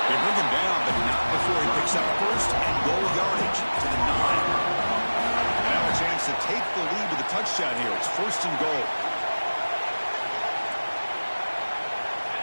They bring him down, but not before he picks up first and goal yardage to the 9. And now a chance to take the lead with a touchdown here. It's first and goal.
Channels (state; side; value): inverted; both; correlation -1.00